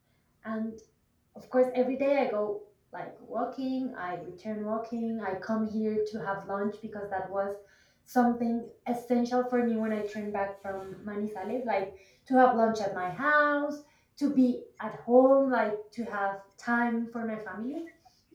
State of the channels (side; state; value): both; identical; correlation 1.00